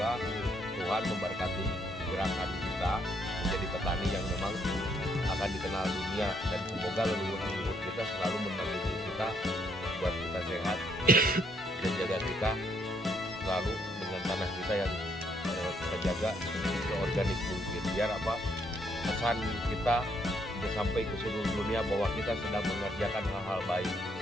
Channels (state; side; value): normal; both; correlation 0.71